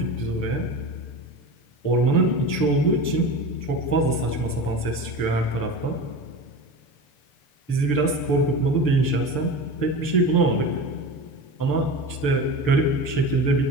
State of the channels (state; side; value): late; right; 6.8 ms